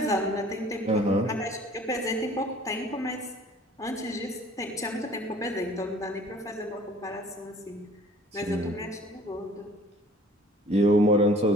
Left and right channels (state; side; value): normal; both; correlation 0.51